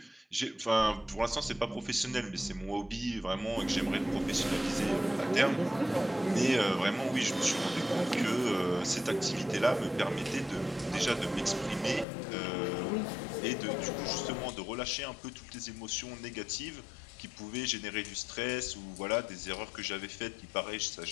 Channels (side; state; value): right; drops out; at 12.1 s